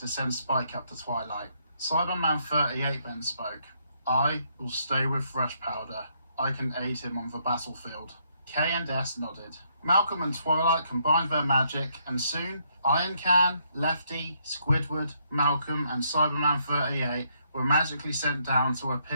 send Spike up to Twilight. Cyberman 38 then spoke. I will stay with Fresh Powder. I can aid him on the battlefield. K and S nodded. Malcolm and Twilight combined their magic, and soon Iron Can, Lefty, Squidward, Malcolm, and Cyberman 38 were magically sent down to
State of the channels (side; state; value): both; inverted; correlation -0.73